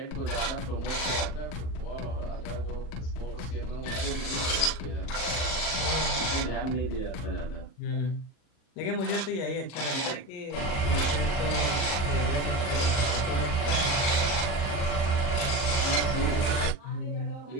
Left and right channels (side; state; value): right; late; 39 ms